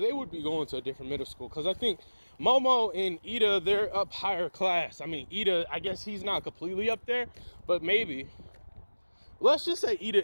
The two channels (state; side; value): inverted; both; correlation -1.00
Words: they would be going to a different middle school. Because I think Momo and Ida, they're up higher class. I mean, Ida, I guess he's not completely up there, but maybe. Let's just say